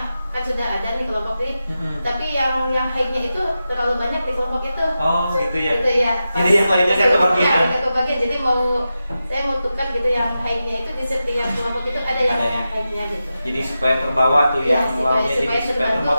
kan sudah ada nih kelompok ini, tapi yang high-nya itu terlalu banyak di kelompok itu. Oh, gitu ya. Gitu ya. Jadi yang lainnya kan kebagian. Ya, kebagian. Jadi saya mau tukar gitu yang high-nya itu di setiap kelompok itu ada yang high-nya gitu. Jadi supaya terbawa tuh yang lawnya, jadi supaya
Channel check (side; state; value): both; inverted; correlation -0.92